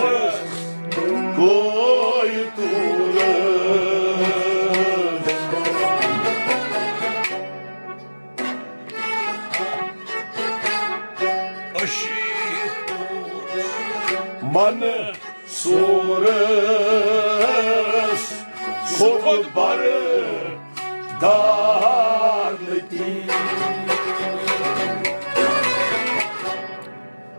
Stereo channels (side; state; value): both; inverted; correlation -1.00